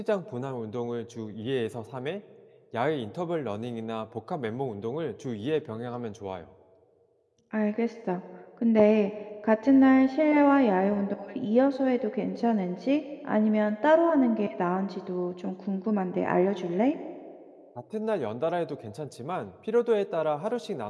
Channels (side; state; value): both; identical; correlation 1.00